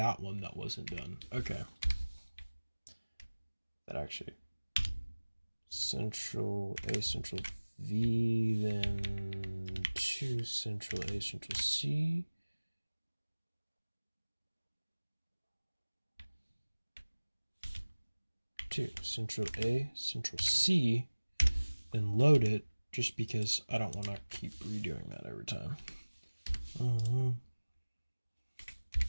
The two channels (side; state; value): both; inverted; correlation -1.00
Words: one that wasn't done. Okay. That actually. Central A, Central V, then 2 Central A, Central C. 2 Central A, Central C, then load it just because I don't want to keep redoing that every time.